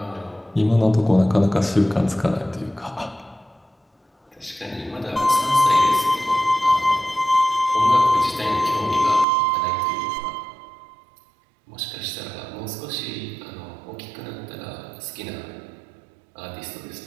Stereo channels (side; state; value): left; drops out; at 9.2 s